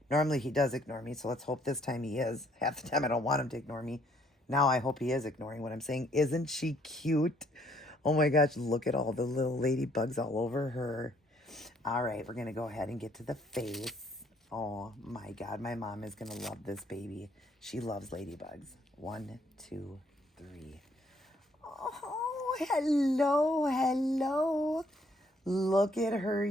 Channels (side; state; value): both; normal; correlation 0.66